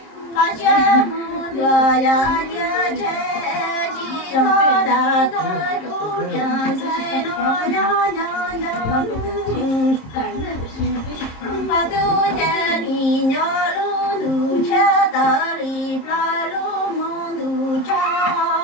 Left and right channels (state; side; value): late; right; 26 ms